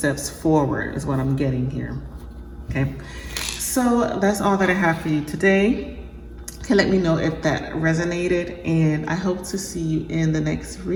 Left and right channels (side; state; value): both; identical; correlation 1.00